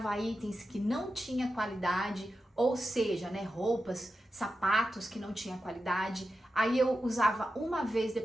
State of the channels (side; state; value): both; normal; correlation 0.90